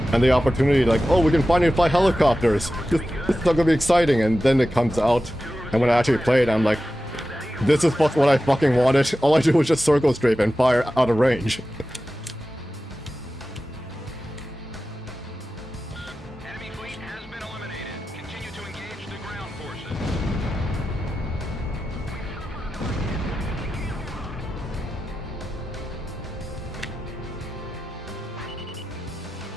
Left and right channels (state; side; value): normal; both; correlation 0.93